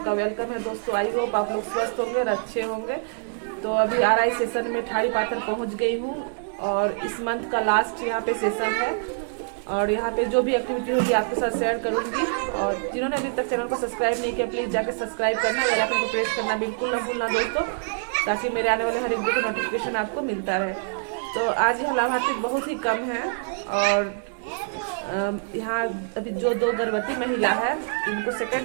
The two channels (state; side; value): silent; left; digital silence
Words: वेलकम है। दोस्तों, आई होप आप लोग स्वस्थ होंगे और अच्छे होंगे। तो अभी आरआई सेशन में ठाड़ी पाथर पहुंच गई हूं और इस मंथ का लास्ट यहाँ पे सेशन है और यहाँ पे जो भी एक्टिविटी होगी आपके साथ शेयर करूंगी। और जिन्होंने अभी तक चैनल को सब्सक्राइब नहीं किया, प्लीज़ जाके सब्सक्राइब करना, बेल आइकन को प्रेस करना बिल्कुल ना भूलना दोस्तों, ताकि मेरे आने वाले हर एक वीडियो का नोटिफिकेशन आपको मिलता रहे। तो आज यहाँ लाभार्थी बहुत ही कम है और यहाँ अभी जो 2 गर्भवती महिला है उनको